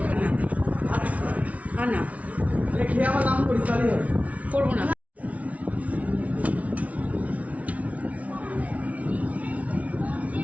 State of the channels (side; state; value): left; late; 0.068 ms